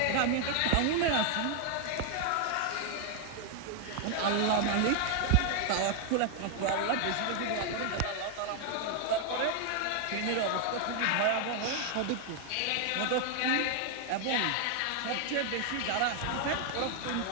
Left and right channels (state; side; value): different; both; correlation 0.00